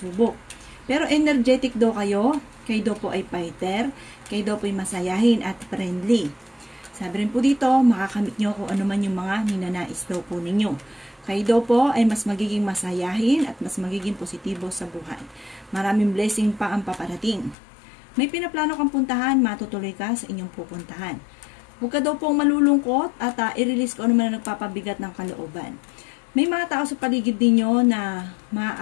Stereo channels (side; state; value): right; drops out; at 17.6 s